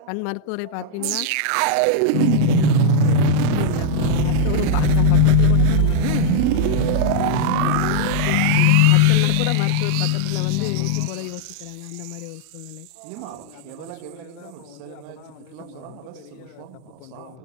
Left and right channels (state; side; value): different; both; correlation -0.01